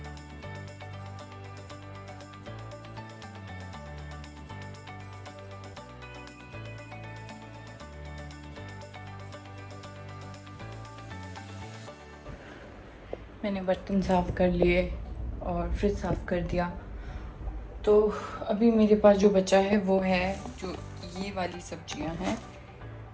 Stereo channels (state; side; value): identical; both; correlation 1.00